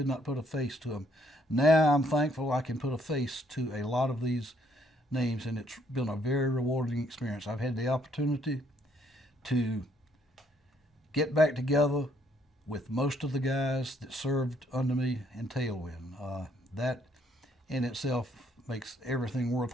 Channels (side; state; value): both; normal; correlation 0.68